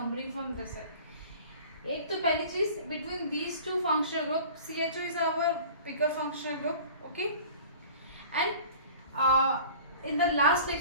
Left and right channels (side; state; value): both; inverted; correlation -0.44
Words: from this side. एक तो पहली चीज, between these two functional group, CHO is our bigger functional group. Okay, and in the last